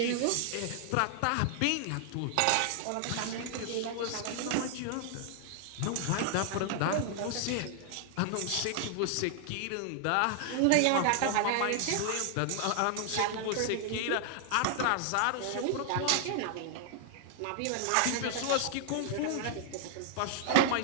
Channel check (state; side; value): different; both; correlation 0.00